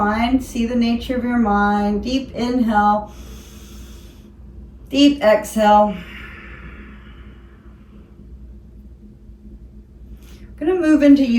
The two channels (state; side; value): identical; both; correlation 1.00